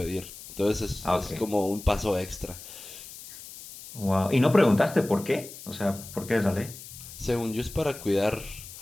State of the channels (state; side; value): noise; left; hiss, 15 dB below the sound